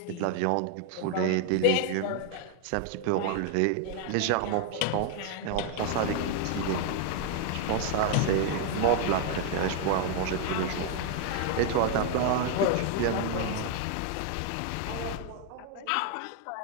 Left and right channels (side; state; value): both; different; correlation 0.00